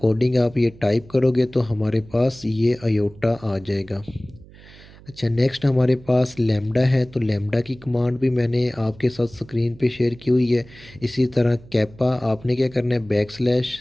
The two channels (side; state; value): right; noise; hum, 22 dB below the sound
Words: आप ये टाइप करोगे तो हमारे पास ये अयोटा आ जाएगा। अच्छा, नेक्स्ट हमारे पास लैम्डा है। तो लैम्डा की कमांड भी मैंने आपके साथ स्क्रीन पे शेयर की हुई है। इसी तरह कैपा आपने क्या करना है, बैक स्लैश